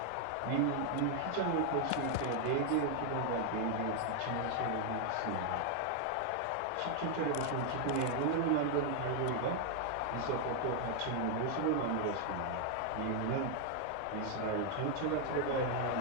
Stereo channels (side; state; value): both; different; correlation 0.00